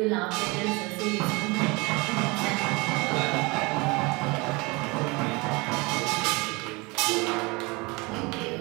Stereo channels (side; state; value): left; quieter; 25.9 dB